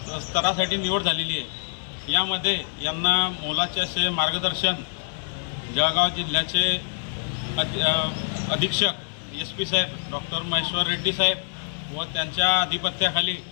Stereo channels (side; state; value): right; silent; 62 dB below the other